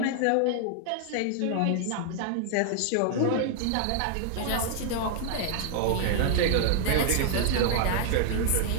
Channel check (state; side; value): different; both; correlation 0.00